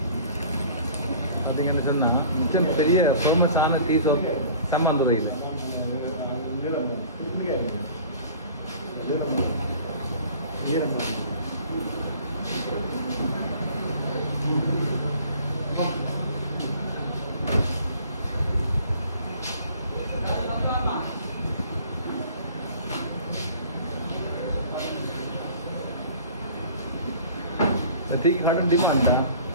பார்த்தீங்கன்னு சொன்னால் மிச்சம் பெரிய ஃபேமஸான டீ ஷோப் சம்மாந்துறையில். டீ கடை டீ பண்ணேன்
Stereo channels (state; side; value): inverted; both; correlation -0.48